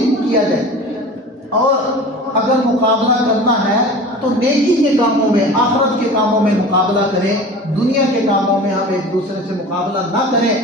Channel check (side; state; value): both; normal; correlation 0.37